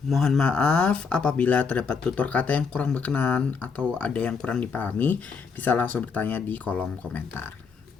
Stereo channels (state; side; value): quieter; right; 5.4 dB